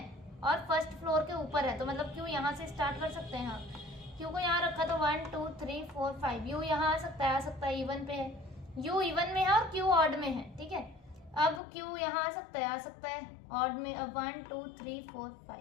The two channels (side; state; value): right; drops out; at 11.6 s